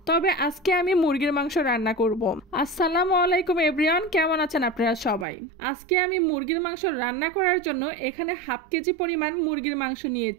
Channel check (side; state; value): left; drops out; at 5.2 s